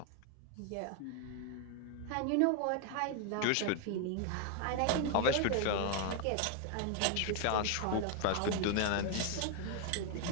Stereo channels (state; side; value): different; both; correlation 0.00